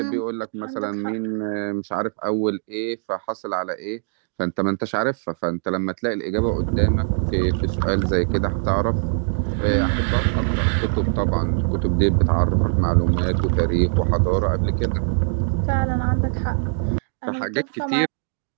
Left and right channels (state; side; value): silent; left; digital silence